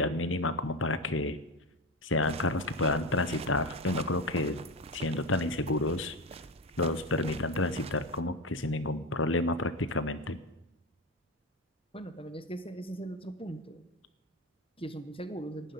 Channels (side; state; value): both; normal; correlation 0.18